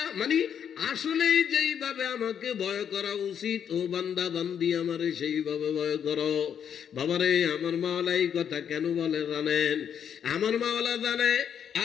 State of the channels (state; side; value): quieter; right; 8.3 dB